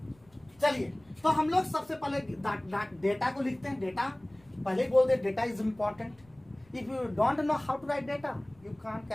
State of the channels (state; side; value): noise; left; rumble, 29 dB below the sound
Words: चलिए तो हम लोग सबसे पहले डेटा को लिखते हैं। डेटा पहले ही बोल दे, data is important. If you don't know how to write data, you can't